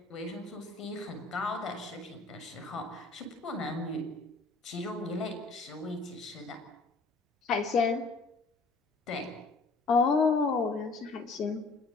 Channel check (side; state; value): right; quieter; 3.7 dB